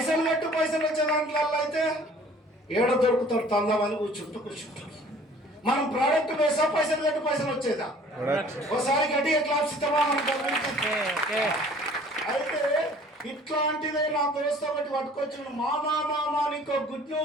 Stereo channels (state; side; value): normal; both; correlation 0.52